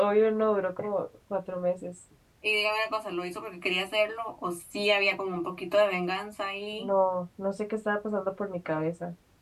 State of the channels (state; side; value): identical; both; correlation 1.00